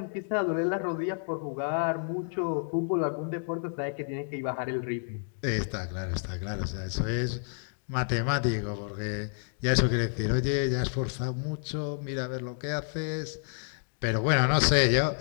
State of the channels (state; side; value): silent; right; digital silence